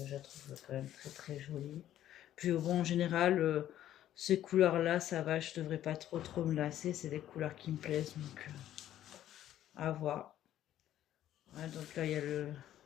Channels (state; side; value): quieter; right; 12.1 dB